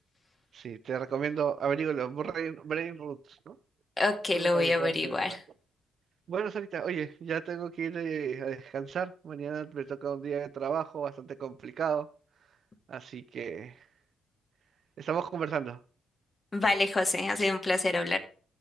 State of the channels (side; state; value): both; normal; correlation 0.82